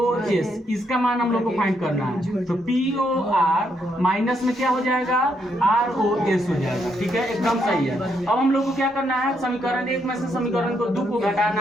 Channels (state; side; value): normal; both; correlation 0.76